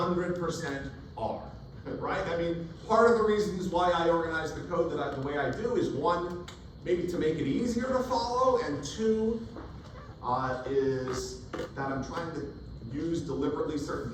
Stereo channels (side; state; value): both; identical; correlation 1.00